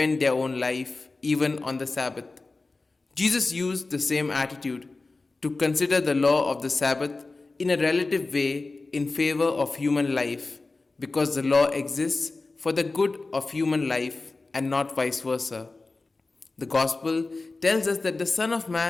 their own life even on the Sabbath. Jesus used the same attitude to consider the law of the Sabbath in a relative way in favor of human life, because the law exists for the good of human life and not vice versa. The Gospel tells us that the Son of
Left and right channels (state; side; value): quieter; right; 3.5 dB